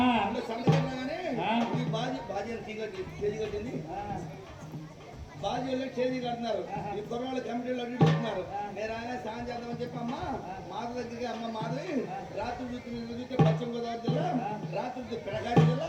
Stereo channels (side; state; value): both; identical; correlation 1.00